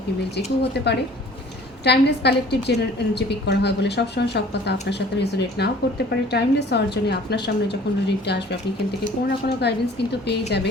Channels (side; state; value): both; normal; correlation 0.50